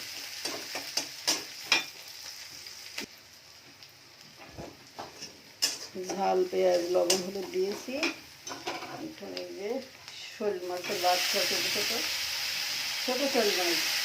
ঝাল পেঁয়াজ লবণ হলুদ দিয়েছি। এখন এই যে শোল মাছের বাচ্চা, ছোটো ছোটো ছোটো শোল মাছ,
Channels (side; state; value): both; identical; correlation 1.00